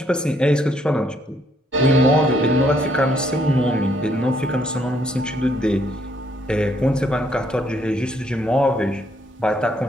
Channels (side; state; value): both; normal; correlation 0.69